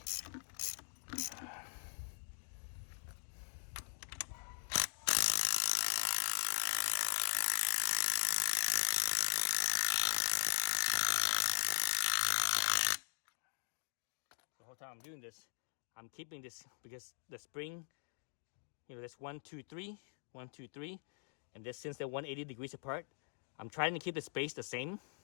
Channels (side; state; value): right; silent; digital silence